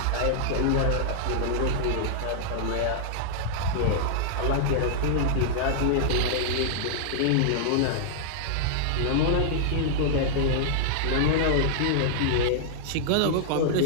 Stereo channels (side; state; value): both; different; correlation -0.01